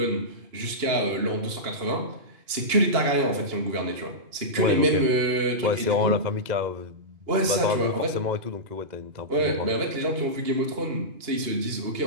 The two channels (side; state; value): left; late; 2.9 ms